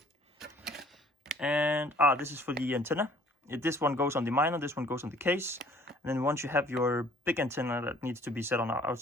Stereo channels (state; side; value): normal; both; correlation 0.56